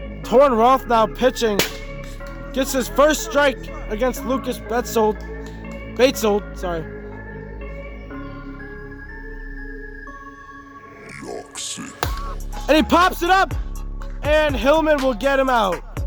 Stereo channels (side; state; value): both; identical; correlation 1.00